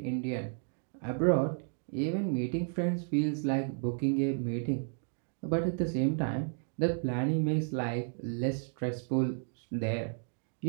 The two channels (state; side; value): silent; left; 56 dB below the other